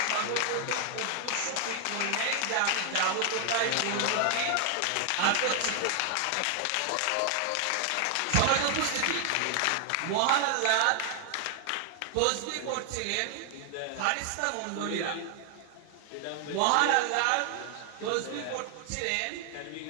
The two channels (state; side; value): different; both; correlation 0.00